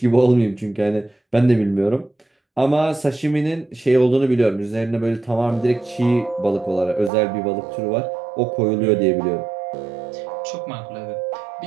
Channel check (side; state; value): left; drops out; at 7.1 s